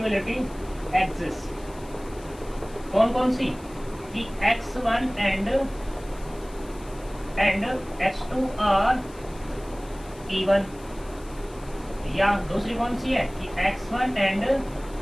एग्जिस्ट, कौन कौन सी, कि x1 and x2 are even, या दूसरी कौन सी है कि x1 and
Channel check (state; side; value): noise; left; hiss, 23 dB below the sound